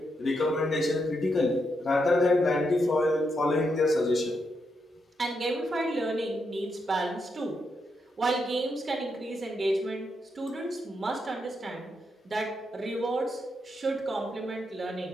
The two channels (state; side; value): normal; both; correlation 0.82